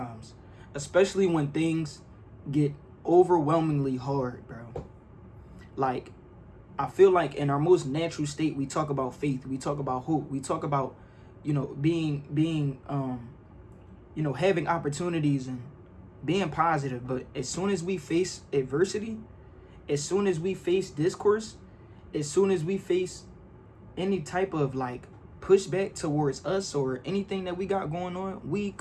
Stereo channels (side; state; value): both; identical; correlation 1.00